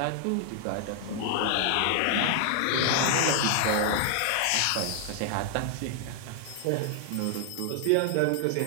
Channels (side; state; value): both; different; correlation 0.00